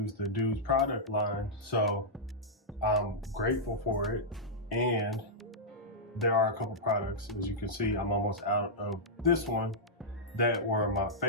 the Douxds product line, so I'm grateful for it. And there are a couple products, as you can see, I'm almost out of this one, that were my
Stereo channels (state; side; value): normal; both; correlation -0.09